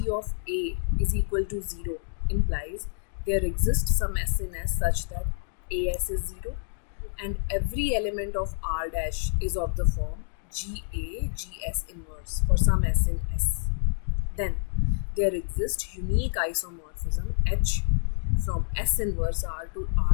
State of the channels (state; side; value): silent; right; digital silence